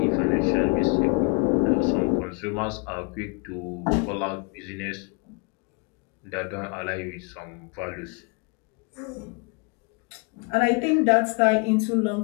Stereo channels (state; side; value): quieter; right; 32.2 dB